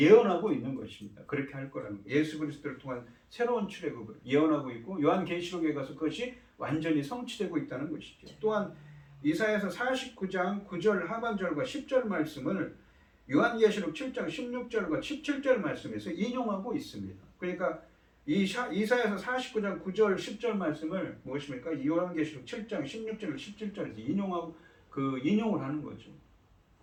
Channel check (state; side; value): identical; both; correlation 1.00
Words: 있는 것입니다. 그렇게 할 거라는 거예요. 예수 그리스도를 통한 새로운 출애굽을 예언하고 있고 요한계시록에 가서 그것이 완전히 성취되고 있다는 것이죠. 또한 이사야서 49장 9절 하반절과 10절 말씀을 요한계시록 7장 16절과 17절 말씀에서 인용하고 있습니다. 그러니까 이사야서 49장 9절 10절 말씀을 무엇입니까? 요한계시록 7장 16절 17절에서 인용을 하는 거죠.